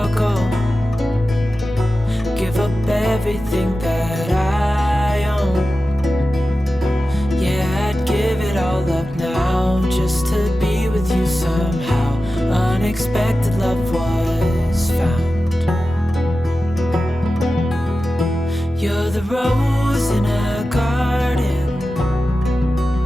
give up everything that I own. Yeah, I'd give it all up now just to be with you somehow. Unexpected love was found. You're the rose in a garden,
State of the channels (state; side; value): normal; both; correlation 0.94